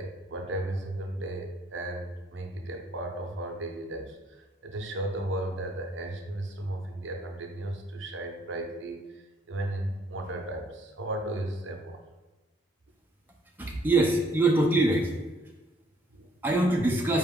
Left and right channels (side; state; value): both; normal; correlation 0.64